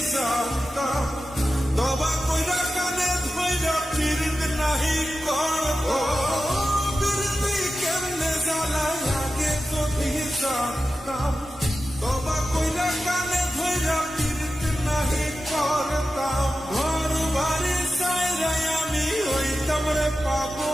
জানতাম তবা কইরা কানে ধইরা ফিরত নাহি করব ফিরতি কেমনে জ্বালায় আগে যদি জানতাম তবা কইরা কানে ধইরা ফিরত নাহি করতাম ঘর বাড়ি সাইরাই আমি হইতাম রে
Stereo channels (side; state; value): both; normal; correlation 0.93